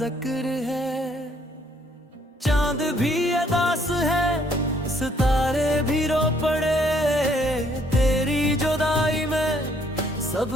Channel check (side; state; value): both; normal; correlation 0.66